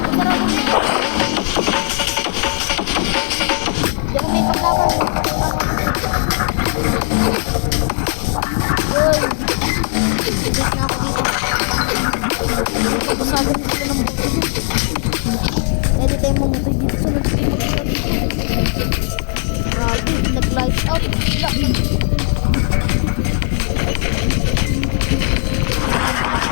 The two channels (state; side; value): silent; right; 56 dB below the other